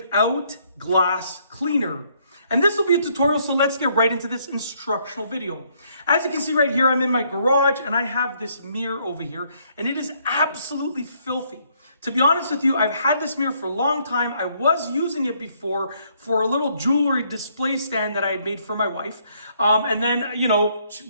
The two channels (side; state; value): both; inverted; correlation -0.69